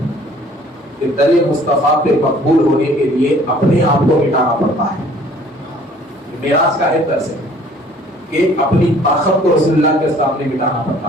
کہ در مصطفیٰ پہ مقبول ہونے کے لیے اپنے آپ کو مٹانا پڑتا ہے. معراج کا ہے درس ہے کہ اپنی طاقت کو رسول اللہ کے سامنے مٹانا پڑتا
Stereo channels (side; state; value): both; normal; correlation 0.55